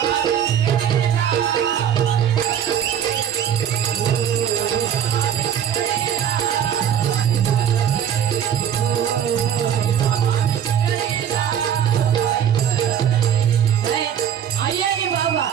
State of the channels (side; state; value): left; quieter; 9.1 dB